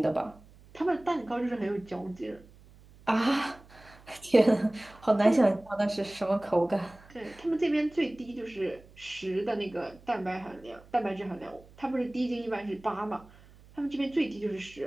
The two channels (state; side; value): noise; right; hum, 24 dB below the sound